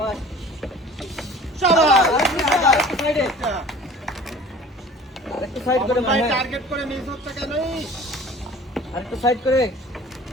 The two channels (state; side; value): normal; both; correlation 0.45